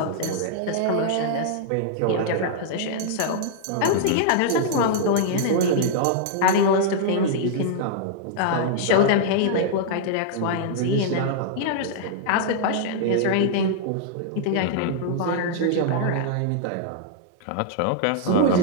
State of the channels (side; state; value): both; different; correlation -0.01